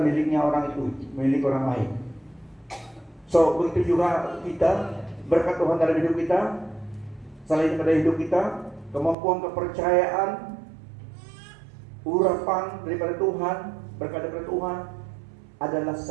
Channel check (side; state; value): left; drops out; at 9.2 s